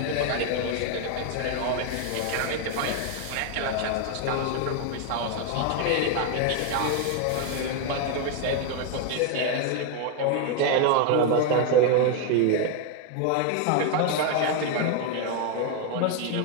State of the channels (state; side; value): different; both; correlation 0.01